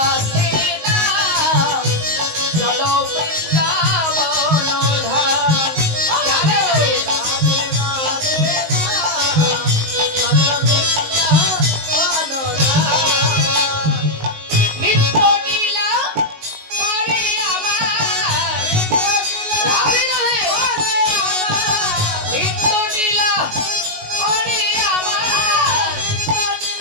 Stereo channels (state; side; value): late; left; 19 ms